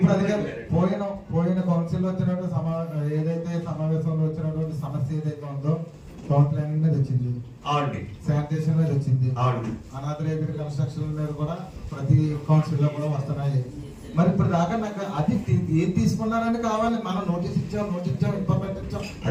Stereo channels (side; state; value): both; identical; correlation 1.00